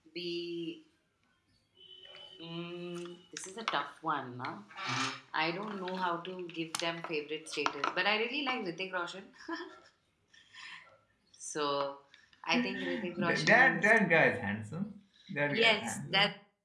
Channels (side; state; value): both; identical; correlation 1.00